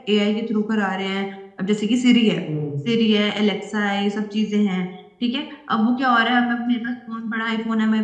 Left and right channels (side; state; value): both; identical; correlation 1.00